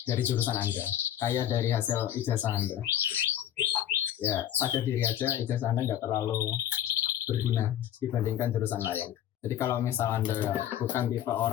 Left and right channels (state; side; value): quieter; right; 11.1 dB